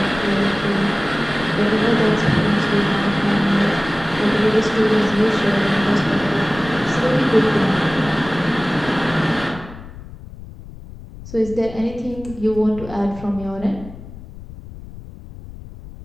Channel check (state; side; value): noise; left; rumble, 15 dB below the sound